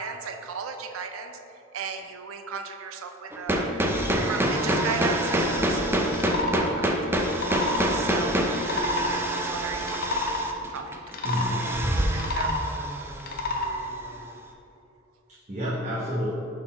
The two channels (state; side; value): normal; both; correlation 0.33